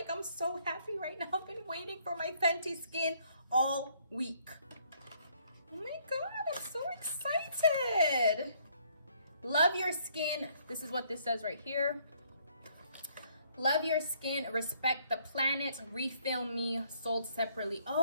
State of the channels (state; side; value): inverted; both; correlation -0.66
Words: I'm so happy right now. I've been waiting for my Fenty Skin all week. Oh my God, I'm so excited. Love your skin. This is what this says right here. Love your skin, respect the planet, refill me, sold separately.